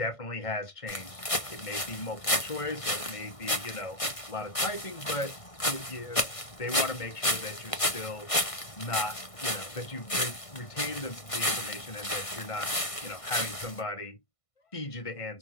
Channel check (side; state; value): right; late; 1.5 ms